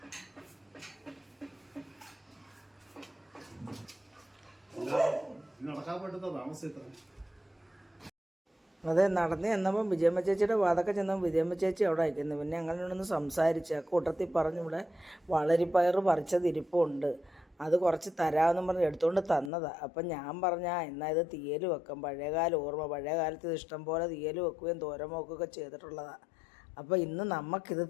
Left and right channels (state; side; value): drops out; right; at 19.5 s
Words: അതെ, നടന്ന് ചെന്നപ്പം വിജയമ്മ ചേച്ചിയുടെ വാതൊക്കെ ചെന്നപ്പോൾ വിജയമ്മ ചേച്ചി അവിടെ അയക്കുന്നു. പിന്നെ അങ്ങനെയൊന്ന് സംസാരിച്ച് ആ കൂട്ടത്തിൽ പറഞ്ഞു, ഇവിടെ വളരിപ്പയർ പറിച്ചത് ഇരിപ്പുണ്ട്, അത് കുറച്ച് തരാമെന്നും പറഞ്ഞ് എടുത്തുകൊണ്ട് തന്നതാണ്. അപ്പം ഞാൻ പറഞ്ഞാൽ എന്നാൽ ഇത് തീയൽ വെക്കാം. പഴയകാല ഓർമ്മ, പഴയ കാലത്ത് ഇത് ഇഷ്ടം പോലെ തീയൽ വെക്കുകയും തോരൻ വെക്കുകയൊക്കെ ചെയ്തിട്ടുള്ളതാണ്. അപ്പോൾ ഇന്ന് നമുക്കിത്